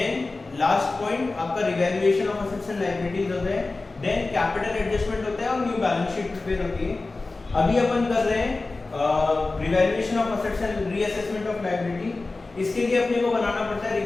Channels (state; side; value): quieter; right; 3.4 dB